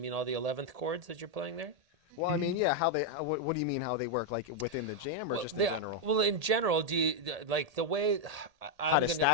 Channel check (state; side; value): late; left; 1.8 ms